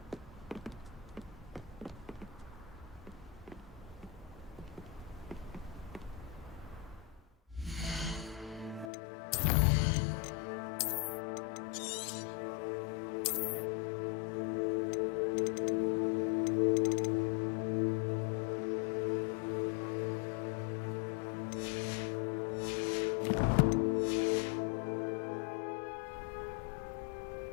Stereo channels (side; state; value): right; drops out; at 8.9 s